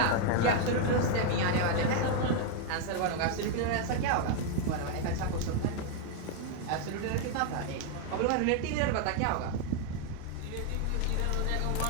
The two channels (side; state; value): both; different; correlation 0.01